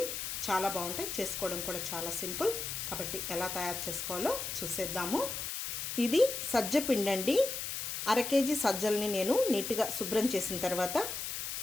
చాలా బాగుంటాయి, చేసుకోవడం కూడా చాలా సింపుల్. కాబట్టి ఎలా తయారు చేసుకోవాలో చూసేద్దాము. ఇది సజ్జ పిండి అండి. 1/2 కేజీ సజ్జల్ని నేను నీట్గా శుభ్రం చేసిన తర్వాత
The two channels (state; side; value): noise; left; hiss, 4 dB below the sound